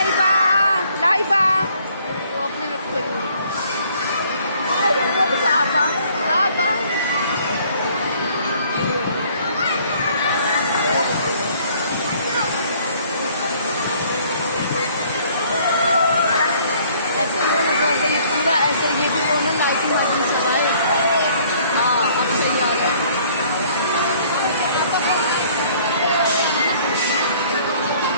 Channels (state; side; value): inverted; both; correlation -0.59